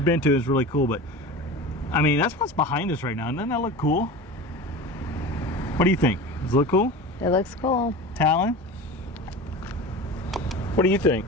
been to, is really cool, but I mean, that's what's behind us right now. Doesn't that look cool? What do you think? Does it look cool? It looks cool. Talon? What do you think?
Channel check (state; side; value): normal; both; correlation 0.32